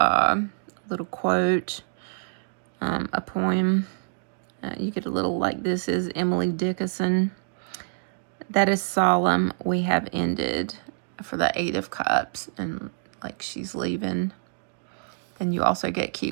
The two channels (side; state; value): left; silent; digital silence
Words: quote, a poem. You get a little like, this is Emily Dickinson. That is solemn, we have ended, for the Eight of Cups, and like she's leaving. Then you also get